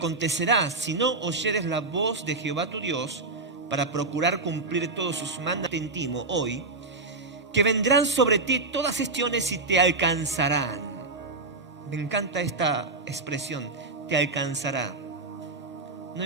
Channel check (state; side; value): quieter; left; 3.5 dB